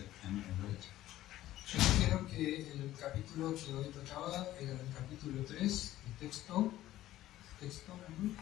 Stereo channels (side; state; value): right; quieter; 14.4 dB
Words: can be read. Yo dijeron que el capítulo que hoy tocaba era el capítulo 3, el texto,